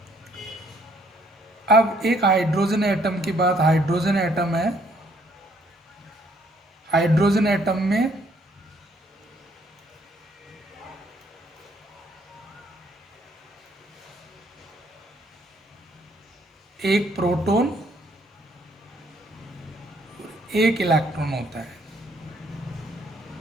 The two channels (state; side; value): normal; both; correlation 0.66